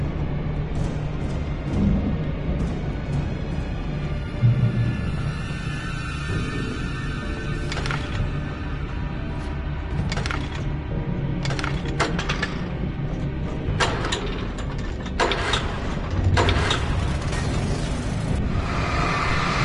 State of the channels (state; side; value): identical; both; correlation 1.00